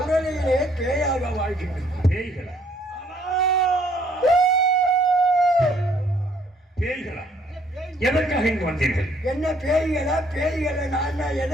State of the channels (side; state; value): both; normal; correlation 0.64